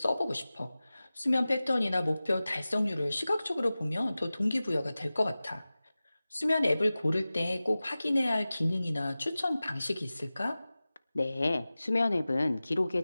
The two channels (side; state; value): both; inverted; correlation -0.97